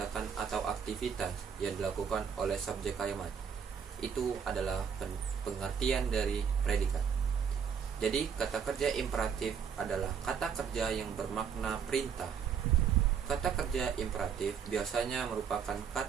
atau aktivitas yang dilakukan oleh subjek kalimat. Itu adalah pengertian dari predikat. Jadi, kata kerja imperatif adalah kata kerja yang bermakna perintah. Kata kerja imperatif biasanya merupakan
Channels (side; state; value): left; quieter; 7.3 dB